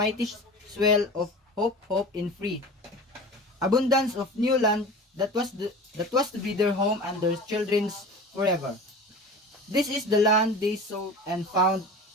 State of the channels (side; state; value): both; normal; correlation 0.35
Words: swell of hope in free abundance of new land that was to be their home and their children's forever. This is the land they sought and found,